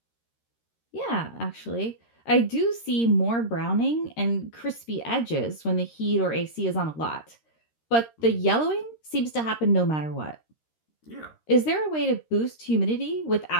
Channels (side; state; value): right; late; 13 ms